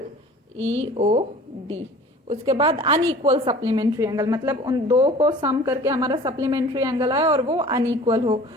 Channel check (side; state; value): both; normal; correlation 0.44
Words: EOD। उसके बाद अनइक्वल सप्लीमेंट्री एंगल मतलब उन दो को सम करके हमारा सप्लीमेंट्री एंगल आए और वो अनइक्वल हो,